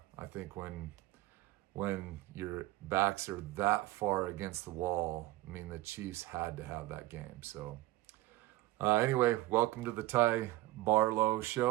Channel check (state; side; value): quieter; left; 18.1 dB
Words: I think when your backs are that far against the wall, the Chiefs had to have that game. So, anyway, welcome to the Ty Barlow